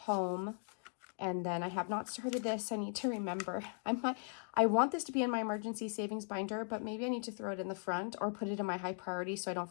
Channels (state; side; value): silent; right; 52 dB below the other